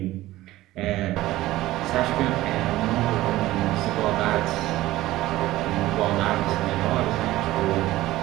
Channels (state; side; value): quieter; left; 16.5 dB